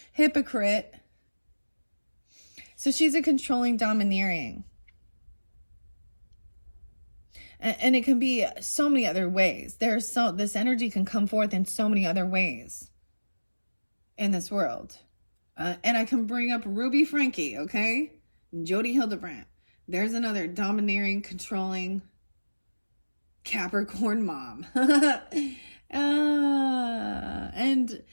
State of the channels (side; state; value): both; inverted; correlation -1.00